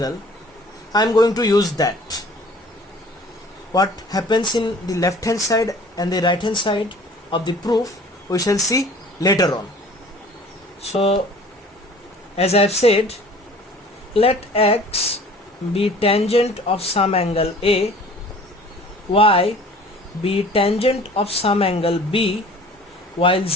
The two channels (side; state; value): both; normal; correlation 0.48